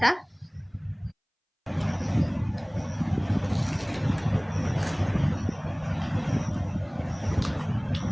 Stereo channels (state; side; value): identical; both; correlation 1.00